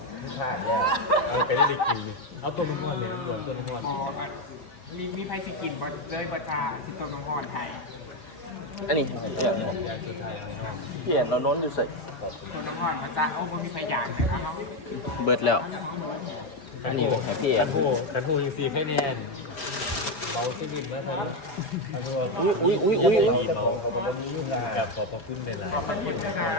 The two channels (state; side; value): late; right; 4.8 ms